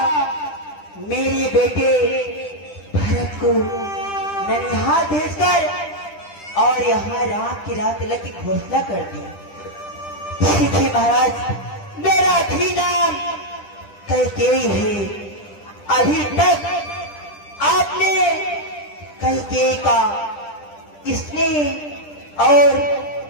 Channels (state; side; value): late; right; 10 ms